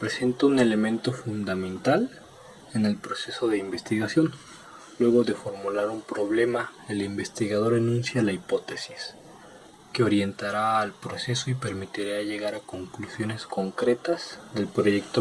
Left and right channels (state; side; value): identical; both; correlation 1.00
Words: un elemento fundamental en el proceso de investigación. Luego de formular un problema, el investigador enuncia la hipótesis, que orientará al proceso y permitirá llegar a conclusiones concretas del